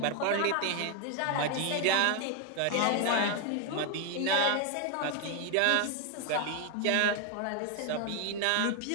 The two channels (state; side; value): different; both; correlation 0.01